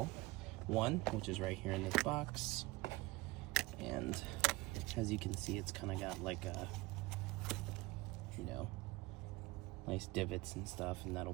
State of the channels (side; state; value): left; quieter; 21.0 dB